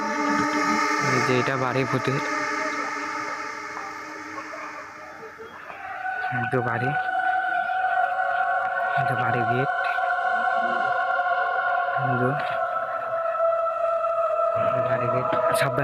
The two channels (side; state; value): both; identical; correlation 1.00